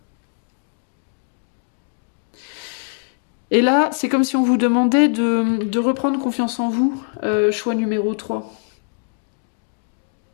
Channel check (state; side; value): silent; right; digital silence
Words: Et là, c'est comme si on vous demandait de reprendre confiance en vous, choix numéro 3.